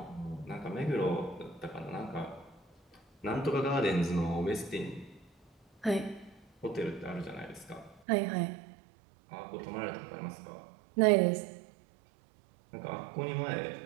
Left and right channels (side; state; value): left; drops out; at 8.0 s